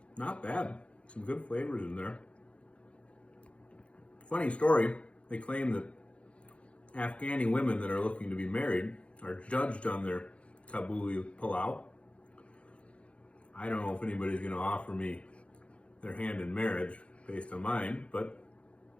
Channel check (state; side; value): late; right; 0.061 ms